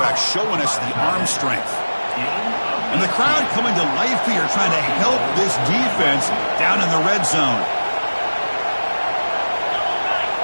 showing us the arm strength. And the crowd coming to life here, trying to help this defense down in the red zone.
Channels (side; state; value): both; inverted; correlation -1.00